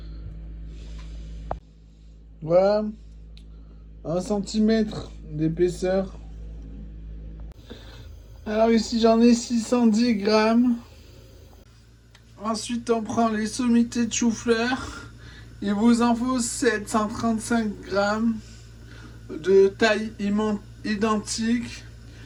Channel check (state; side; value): identical; both; correlation 1.00